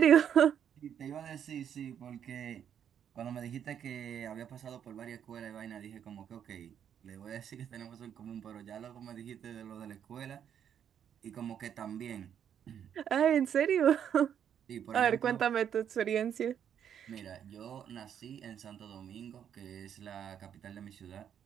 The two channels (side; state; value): left; quieter; 8.9 dB